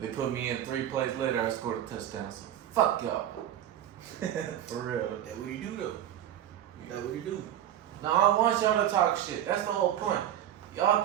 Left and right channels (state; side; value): quieter; left; 11.4 dB